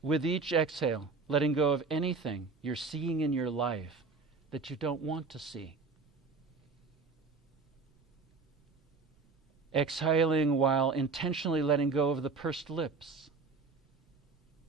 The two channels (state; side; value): quieter; left; 4.4 dB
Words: With each exhale, letting go of anything you're seeing in your life that you don't want to see. Exhaling while intentionally letting go of the pursed lips,